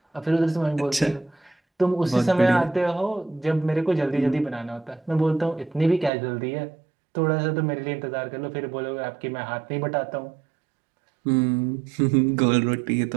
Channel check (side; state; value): left; drops out; at 6.1 s